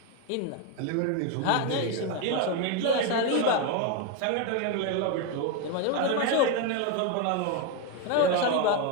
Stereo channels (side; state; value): both; different; correlation 0.02